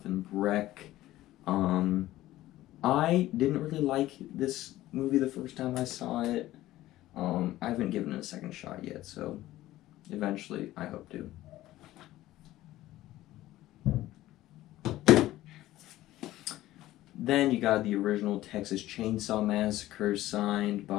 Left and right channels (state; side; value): quieter; right; 15.5 dB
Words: Breck. I didn't really like this movie the first time I saw it. I haven't given it a second shot yet, so eventually I hope to. Then you got the original Texas Chainsaw Massacre, signed